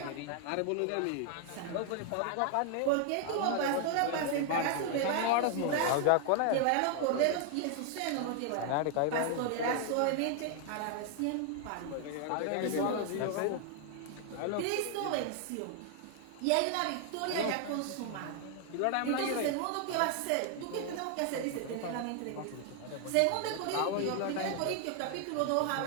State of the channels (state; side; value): different; both; correlation 0.00